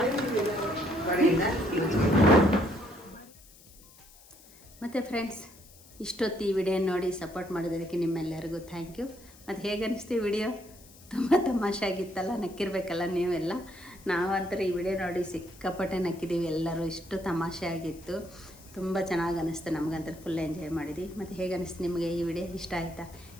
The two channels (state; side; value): noise; left; hiss, 23 dB below the sound